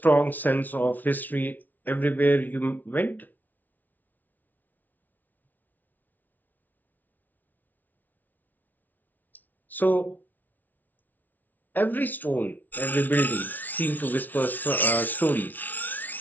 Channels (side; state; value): right; late; 0.081 ms